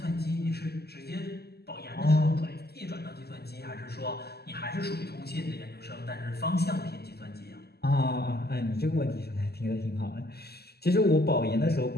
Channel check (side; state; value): right; late; 0.46 ms